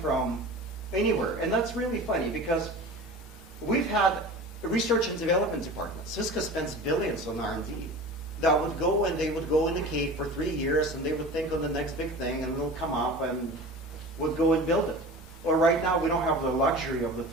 anywhere, and that's really funny because we've had a research and development department. Cisco spends billions on R&D. That would go, and they would go in the cave for 3 years, and they would think on the next big thing, and it'll come up and would go and build it. Well, right now we don't have the luxury of the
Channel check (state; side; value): normal; both; correlation 0.36